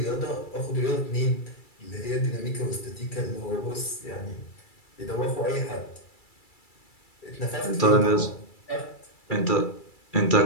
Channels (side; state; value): right; late; 2.3 ms